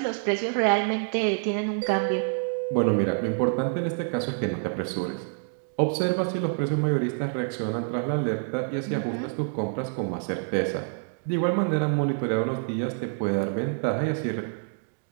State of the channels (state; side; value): silent; left; digital silence